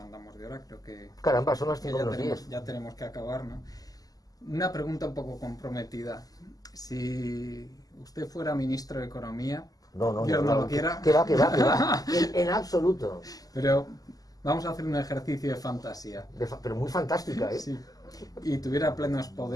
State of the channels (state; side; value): late; right; 0.17 ms